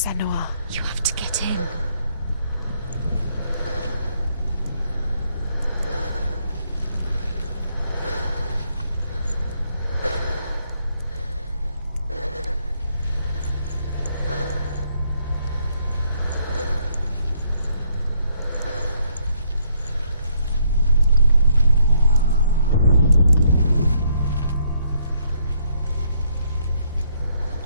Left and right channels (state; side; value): inverted; both; correlation -0.71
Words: Senua. You have to get in.